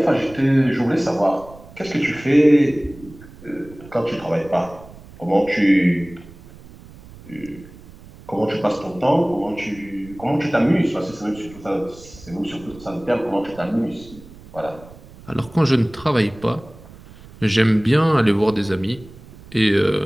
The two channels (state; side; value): noise; right; rumble, 20 dB below the sound